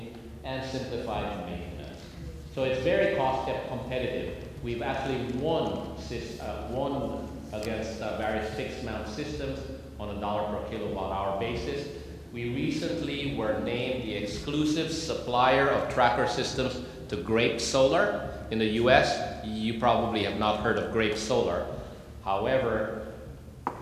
and simplified maintenance. So it's very cost competitive. We've actually won against various fixed mount systems on a $ per kilowatt hour basis. We recently were named the exclusive supplier of tracker systems to Grape Solar in the US. You probably have not heard of Grape Solar. However,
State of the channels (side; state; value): both; identical; correlation 1.00